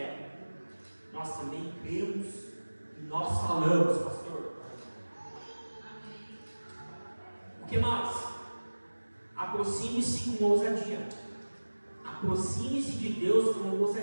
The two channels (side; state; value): both; inverted; correlation -1.00